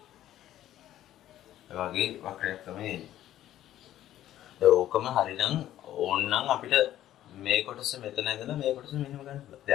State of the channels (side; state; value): right; quieter; 12.8 dB